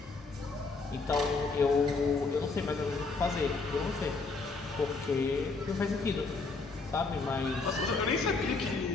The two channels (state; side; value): quieter; right; 4.0 dB